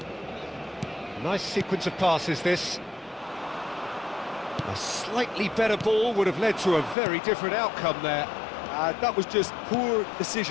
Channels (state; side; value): drops out; right; at 7.0 s